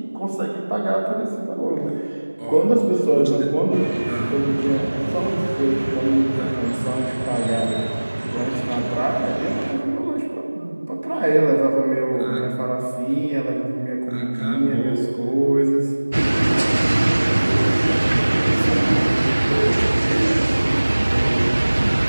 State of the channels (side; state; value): both; inverted; correlation -1.00